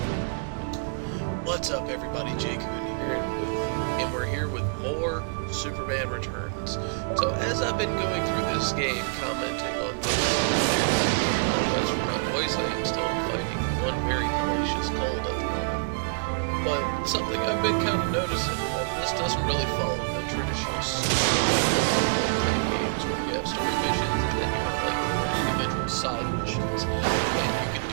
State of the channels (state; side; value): quieter; left; 38.8 dB